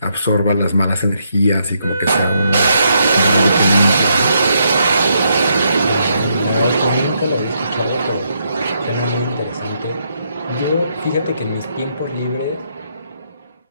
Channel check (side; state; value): both; inverted; correlation -0.77